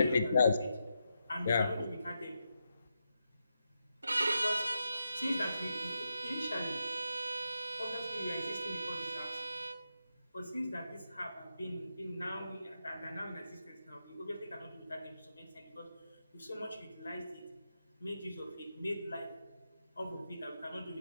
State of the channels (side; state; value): both; inverted; correlation -0.85